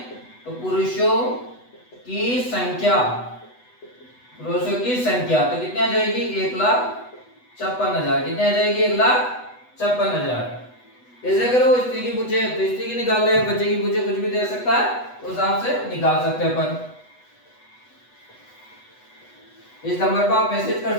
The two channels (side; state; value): right; late; 8.1 ms